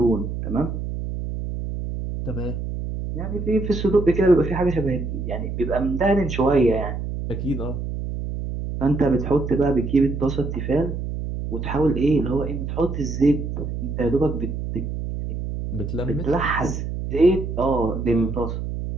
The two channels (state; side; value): noise; right; hum, 5 dB below the sound